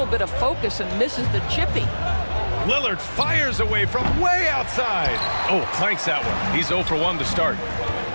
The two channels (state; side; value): inverted; both; correlation -1.00